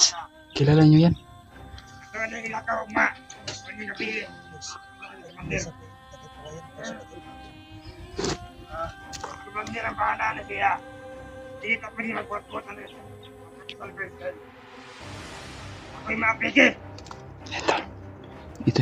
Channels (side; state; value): both; identical; correlation 1.00